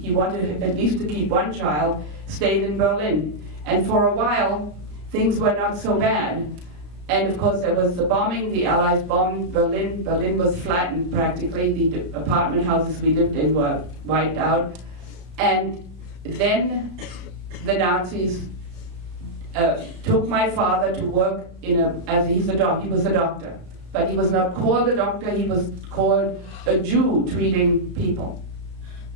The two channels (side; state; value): left; late; 33 ms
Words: wanted at least to keep one child, stayed in Berlin. And for a while, things were not so bad. And of course, there was the bombing. The Allies bombed Berlin. Berlin was flattened practically. The apartment houses we lived in were wiped out. And then the Nazis took my father to work in he was a doctor. But he was not called a doctor, he was called a Jew treating people.